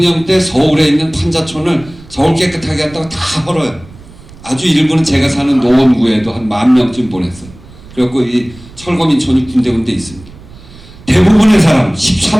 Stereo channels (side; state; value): right; noise; rumble, 21 dB below the sound